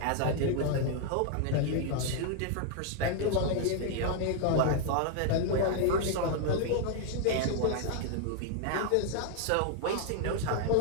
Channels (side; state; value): both; different; correlation 0.00